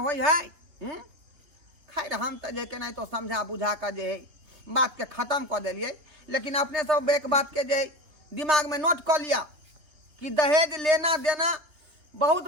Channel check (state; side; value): late; left; 3.6 ms